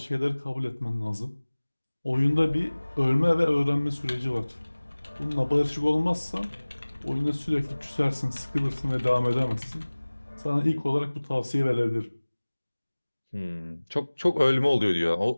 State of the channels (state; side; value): inverted; both; correlation -1.00